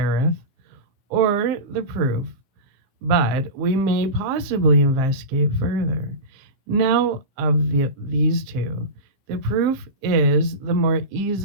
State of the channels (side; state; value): left; late; 15 ms